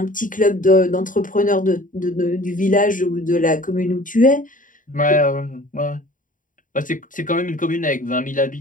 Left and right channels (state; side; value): late; right; 0.38 ms